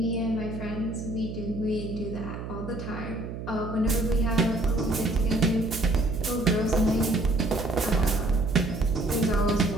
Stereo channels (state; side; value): noise; right; hum, 8 dB below the sound